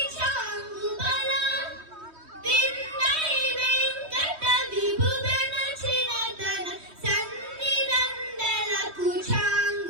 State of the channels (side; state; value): left; late; 3.2 ms